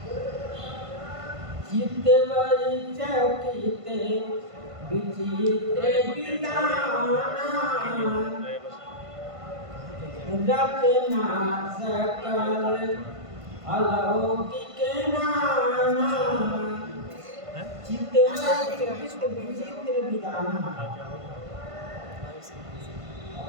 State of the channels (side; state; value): left; late; 1.5 ms